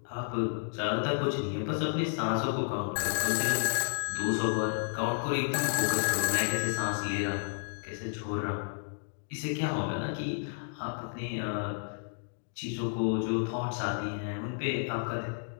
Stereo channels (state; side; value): silent; right; digital silence